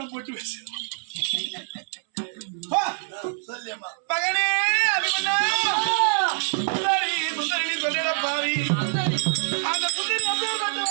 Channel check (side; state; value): left; silent; 62 dB below the other